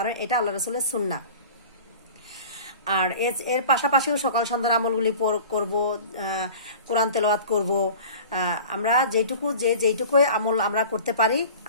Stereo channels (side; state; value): both; inverted; correlation -0.41